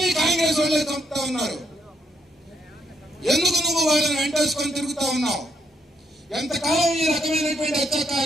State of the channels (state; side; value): normal; both; correlation 0.75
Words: నీ కాంగ్రెస్ వాళ్ళే చంపుతా ఉన్నారు? ఎందుకు నువ్వు వాళ్ళని వెంటేసుకొని తిరుగుతా ఉన్నావు? ఎంతకాలం ఈ రకమైనటువంటి